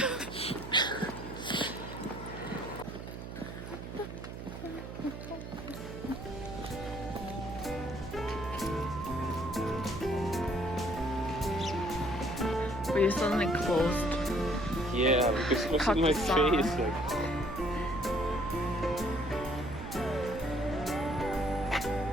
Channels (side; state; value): right; noise; hum, 9 dB below the sound